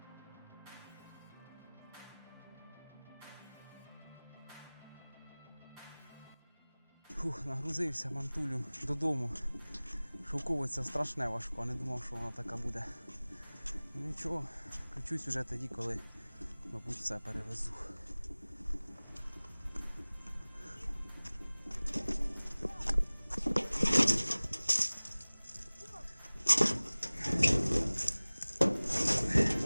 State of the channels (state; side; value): inverted; both; correlation -1.00